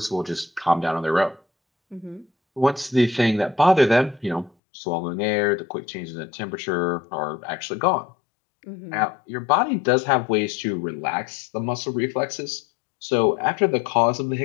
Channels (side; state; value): right; drops out; at 4.5 s